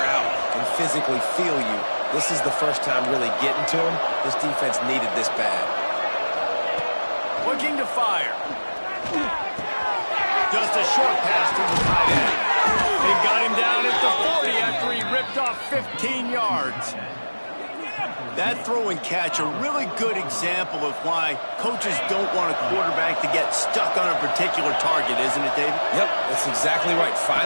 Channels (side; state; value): both; inverted; correlation -1.00